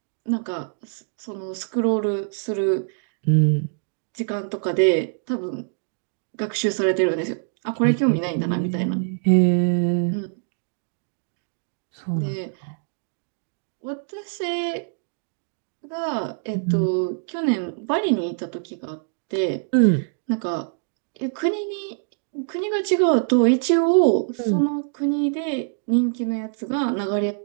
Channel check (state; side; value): silent; left; digital silence